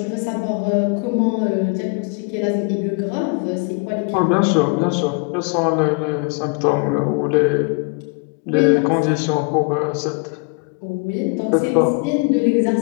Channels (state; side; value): quieter; right; 35.7 dB